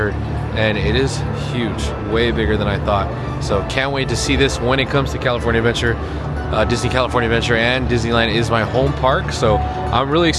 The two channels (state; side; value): identical; both; correlation 1.00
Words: And it is huge, way bigger than I thought. So can't wait to see this when it comes to California Adventure. Disney California Adventure and Disneyland is my home park, so I'm really